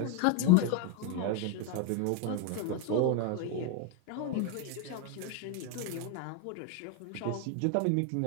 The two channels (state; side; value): different; both; correlation 0.01